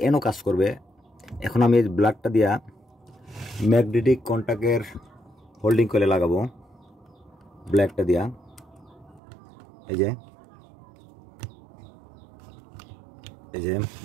এনও কাজ করবে। এখন আমি এই ব্ল্যাকটা দিয়া ম্যাগনেটিক কন্টাক্টের হোল্ডিং করে লাগাবো। ব্ল্যাকটা দিয়া এই যে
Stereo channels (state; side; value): drops out; left; at 9.2 s